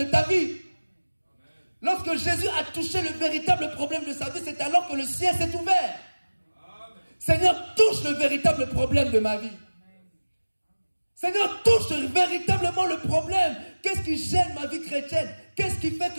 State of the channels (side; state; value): both; inverted; correlation -1.00